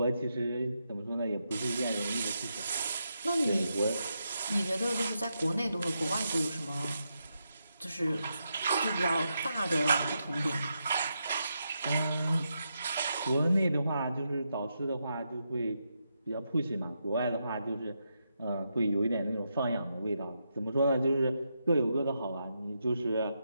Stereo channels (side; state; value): both; inverted; correlation -0.84